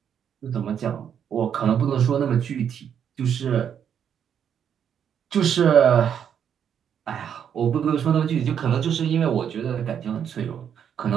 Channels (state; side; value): quieter; left; 8.4 dB